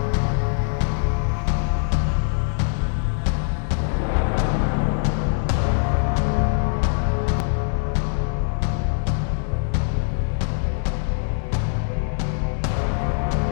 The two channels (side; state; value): right; silent; digital silence